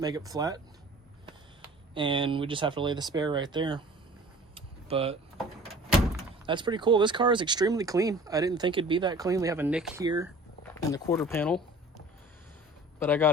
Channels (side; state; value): both; normal; correlation 0.46